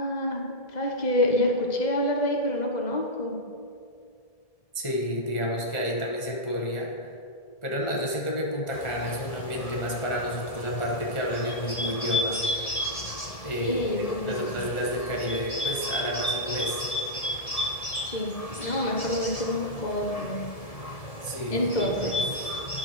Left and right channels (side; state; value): right; late; 1.7 ms